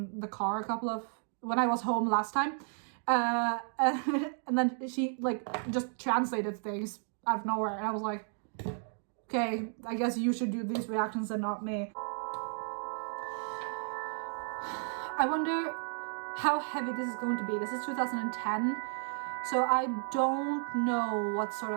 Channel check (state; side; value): silent; left; 56 dB below the other